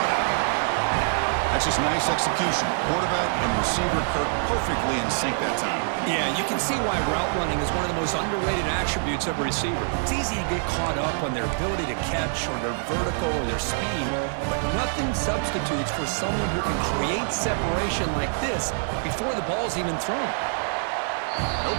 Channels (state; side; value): silent; left; digital silence